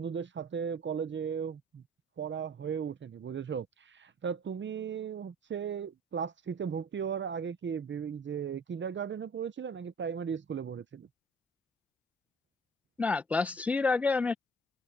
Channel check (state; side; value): normal; both; correlation 0.50